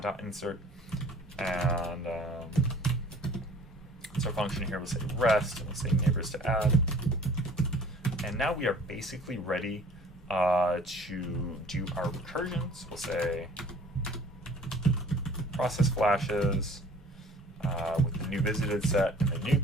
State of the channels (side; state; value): both; normal; correlation 0.51